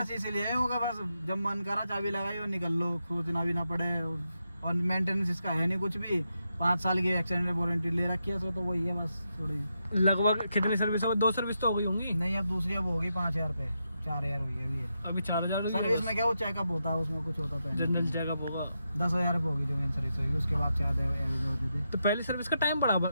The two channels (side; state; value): both; inverted; correlation -0.85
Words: इसीलिए होगा, बस जब मन करा चाबी लगाई और निकल लो, खोजना भी ना पड़े, और मेंटेनेंस इसका है नहीं कुछ भी। 5 साल की एक्सटेंडेड वारंटी ले रखी है, तो वही है बस थोड़ी। लगभग कितनी सर्विस हो? 2 सर्विस तो हो गई होंगी? नहीं, अब दूसरी अब होगी 5,000 पे, 4,000 हुई है अभी। अभी 4,000 सर्विस में क्या वो चेकअप होता है, उसमें कुछ होता तो जनरल चेकअप होगा। 10,000 रुपये होगी जो मेन सर्विस होगी, उसके बाद 4,000 होते थे। तो पहली सर्विस का टाइम बड़ा